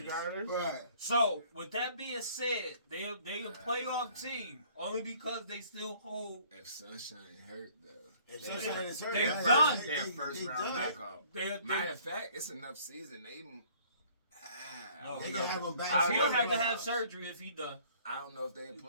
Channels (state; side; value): inverted; both; correlation -0.57